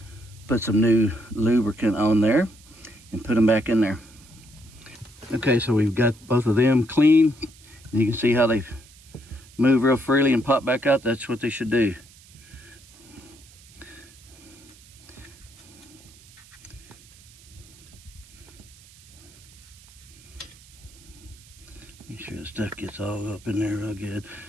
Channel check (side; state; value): right; noise; hiss, 24 dB below the sound